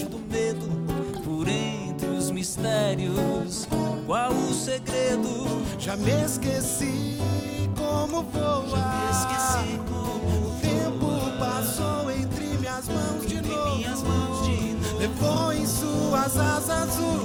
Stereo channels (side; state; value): both; identical; correlation 1.00